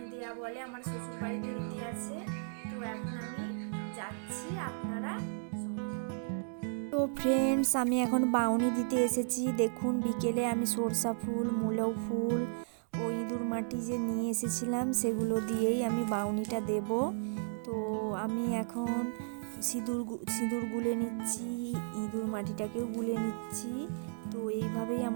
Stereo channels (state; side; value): silent; left; digital silence